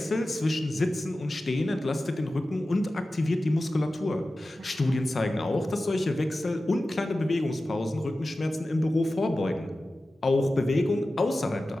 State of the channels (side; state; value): both; normal; correlation 0.95